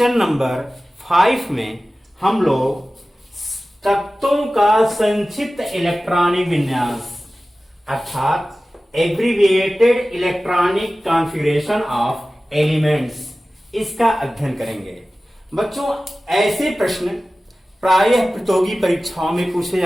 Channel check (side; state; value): both; normal; correlation 0.96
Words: नंबर 5 में हम लोग तत्वों का संक्षिप्त इलेक्ट्रॉनिक विन्यास अर्थात abbreviated electronic configuration of elements इसका अध्ययन करेंगे। बच्चों, ऐसे प्रश्न प्रायः प्रतियोगी परीक्षाओं में पूछे